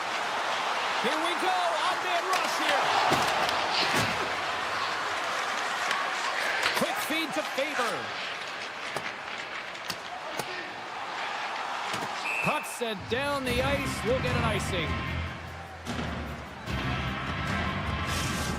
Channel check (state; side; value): identical; both; correlation 1.00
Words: Here we go. On-man rush here. Quick feed to Faber. Puck sent down the ice. We'll get an icing.